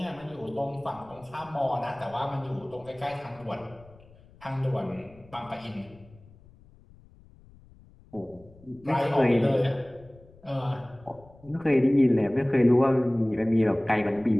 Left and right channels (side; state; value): left; noise; rumble, 25 dB below the sound